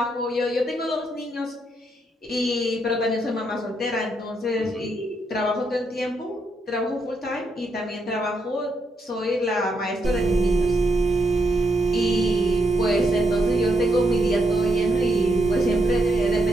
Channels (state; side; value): normal; both; correlation 0.78